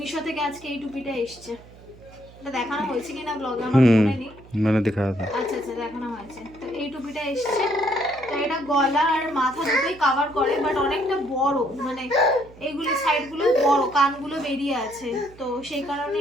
থেকে আজকে এই টুপিটা এসছে। এটা দেখানো হয়েছে কিনা ব্লগে আমার মনে নেই, मैंने दिखाया था। আচ্ছা আচ্ছা দেখানো হয়েছে। তো এই টুপিটা এসছে, তো এটা গলা আর মাথা দুটোই কভার করে, বাট অনেকটা বড়, মানে এইগুলো সাইডগুলো বড়, কানগুলো বেরিয়ে আছে, তো সেই কারণে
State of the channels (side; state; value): right; noise; hum, 22 dB below the sound